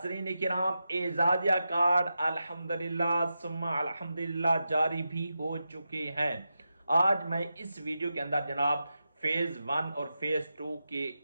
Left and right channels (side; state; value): both; inverted; correlation -0.89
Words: किराम, एजाजिया कार्ड अल्हम्दुलिल्लाह सुम्मा अल्हम्दुलिल्लाह जारी भी हो चुके हैं। आज मैं इस वीडियो के अंदर जनाब फेज 1 और फेज 2 के